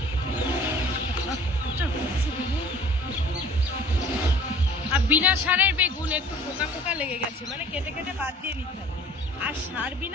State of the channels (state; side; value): normal; both; correlation 0.49